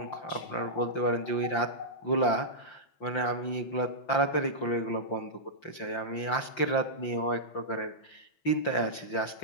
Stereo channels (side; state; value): right; late; 5.8 ms